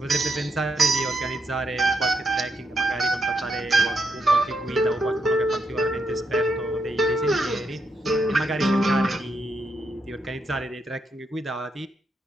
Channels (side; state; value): both; normal; correlation 0.81